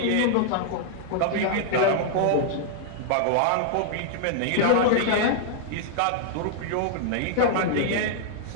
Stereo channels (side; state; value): both; different; correlation -0.01